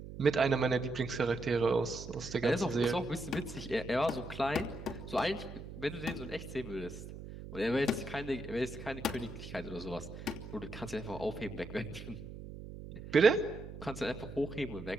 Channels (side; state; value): right; noise; hum, 11 dB below the sound